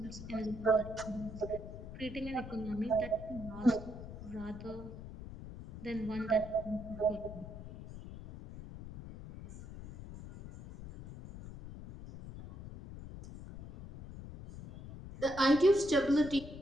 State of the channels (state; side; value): noise; left; rumble, 12 dB below the sound